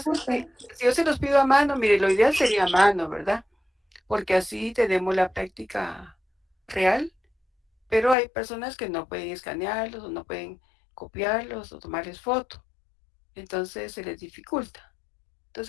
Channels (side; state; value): right; drops out; at 8.2 s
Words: es que si yo se los pido a mano, mire, lo ideal sería a mano, ¿verdad? Porque así tenemos la práctica real, pero hay personas que no pueden escanearlos o no pueden copiarlos o tomarles foto. Entonces se les dificulta.